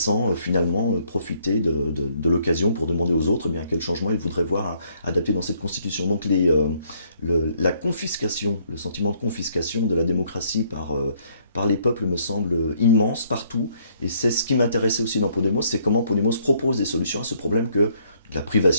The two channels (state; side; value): inverted; both; correlation -0.67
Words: finalement profiter de l'occasion pour demander aux autres quel changement ils voudraient voir adapté dans cette constitution. Donc la confiscation, le sentiment de confiscation de la démocratie par les peuples me semble immense partout, et c'est ce qui m'intéressait aussi dans Podemos, c'est comment Podemos propose des solutions à ce problème de la